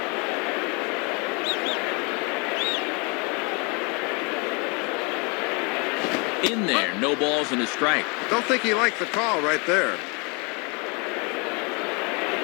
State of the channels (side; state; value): right; quieter; 31.4 dB